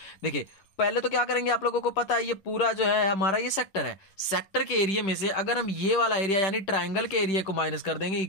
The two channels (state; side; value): late; right; 10 ms